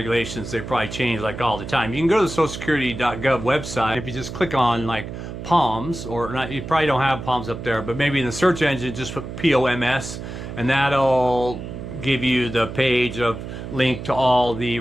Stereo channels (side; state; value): right; noise; hum, 9 dB below the sound